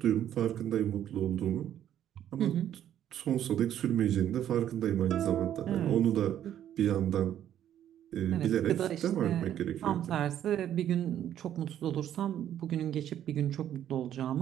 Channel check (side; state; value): left; quieter; 10.8 dB